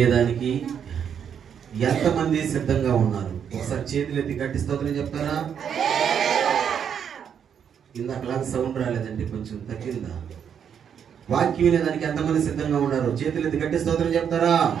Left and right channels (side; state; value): left; quieter; 8.0 dB